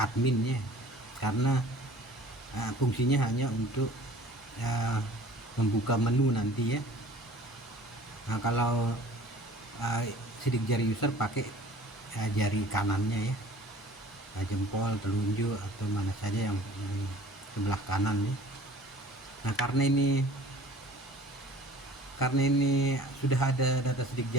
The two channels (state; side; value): normal; both; correlation 0.48